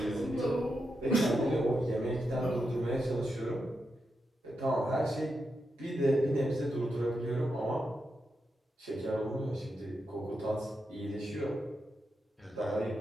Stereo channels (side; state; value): both; normal; correlation 0.86